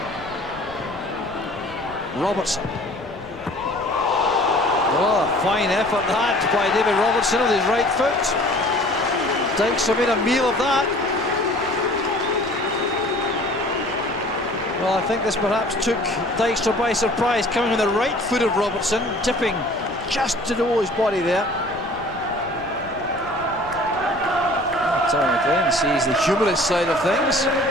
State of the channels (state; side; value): noise; left; rumble, 20 dB below the sound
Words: Robertson. Oh, fine effort that by David Robertson with his right foot. Dykstra made a meal of that. Well, I think this perhaps took Dykstra by surprise, coming on the right foot of Robertson, dipping just to the his body there. Terry McLean sees the humorous side of things.